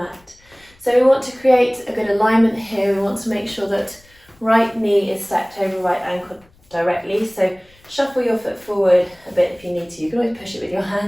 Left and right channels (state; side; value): noise; left; rumble, 30 dB below the sound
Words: So we want to create a good alignment here. We want to make sure that right knee is stacked over right ankle directly. So shuffle your foot forward a bit if you need to. You can always push it with your